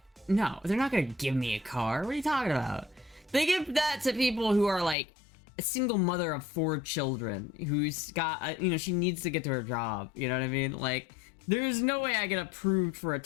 No, they're not gonna give me a car. What are you talking about? They give that to people who are like a single mother of 4 children who's got, you know, she needs to get to her job. You know what I mean? Like, there's no way I get approved for a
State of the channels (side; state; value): right; drops out; at 5.0 s